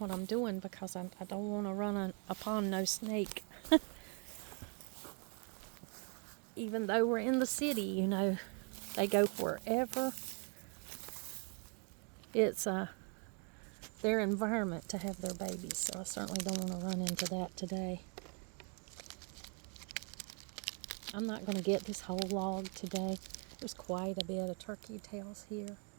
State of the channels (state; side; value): quieter; left; 37.6 dB